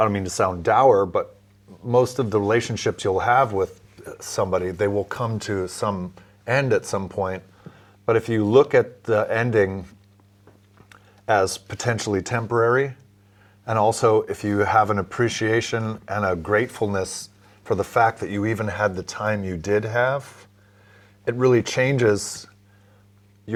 mean to sound dour, but most of the relationships you'll have with somebody, they will come to some end at some point. But if you look at the ending as potentially temporary, and also if you have an appreciation and a gratefulness for the fact that you even had the time you did have, it really changes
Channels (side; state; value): both; identical; correlation 1.00